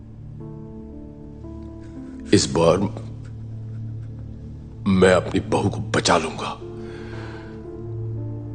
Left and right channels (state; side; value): identical; both; correlation 1.00